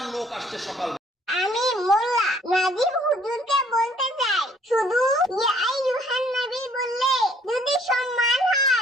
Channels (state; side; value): normal; both; correlation 0.61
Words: লোক আসছে সকাল। আমি মোল্লা নাজিব হুজুরকে বলতে চাই, শুধু ইয়া আইয়ুহান নবী বললে যদি সম্মান